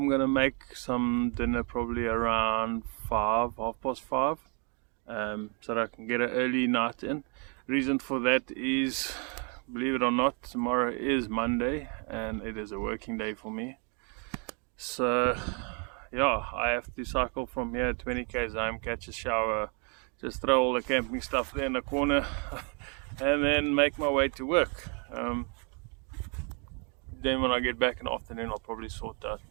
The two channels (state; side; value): quieter; left; 36.6 dB